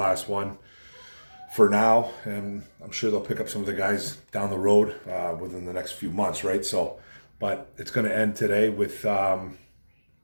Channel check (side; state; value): both; inverted; correlation -1.00